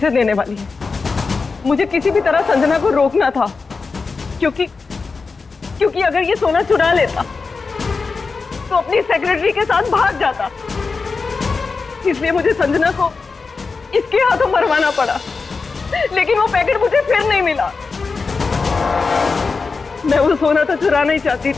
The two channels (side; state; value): right; quieter; 4.5 dB